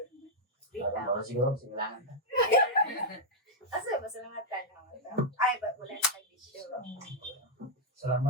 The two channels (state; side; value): normal; both; correlation -0.02